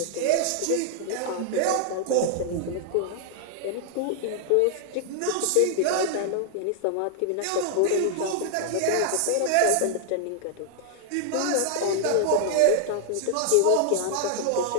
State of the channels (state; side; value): different; both; correlation 0.00